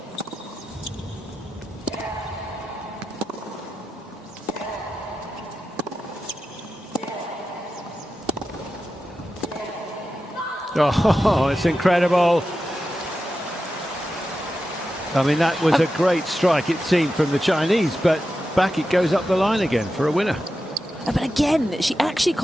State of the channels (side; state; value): both; normal; correlation 0.91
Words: Oh, it's incredible. I mean, that was a great strike, it seemed, from the Chinese, but back it goes up the line again for a winner. But again, she actually